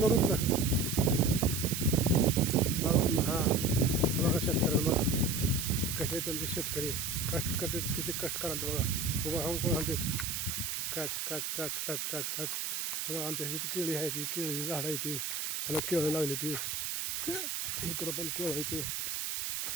बघा हां बघा शेतकऱ्याला बघा कसे आहेत तुमचे शेतकरी कष्ट करतात किती कष्ट कराल बघा उभा राहून कोण आणतात काच काच काच काच काच काच बघा आमच्या इथे केळी आहे ती केळीची झाडं आहे ती ह्याला केळं लागली ती इकडं पण केळं आहे ते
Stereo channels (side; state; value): right; noise; hiss, 2 dB below the sound